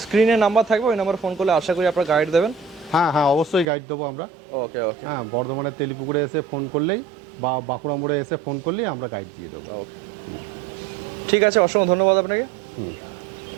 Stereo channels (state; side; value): drops out; left; at 3.7 s